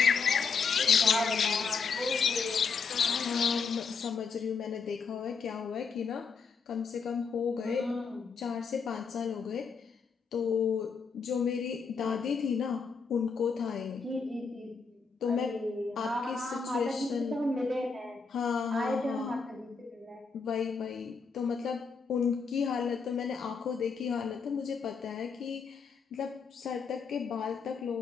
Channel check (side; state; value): right; quieter; 5.3 dB